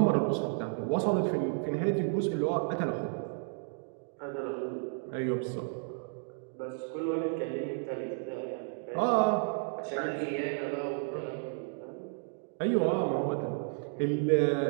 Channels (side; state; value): left; silent; 56 dB below the other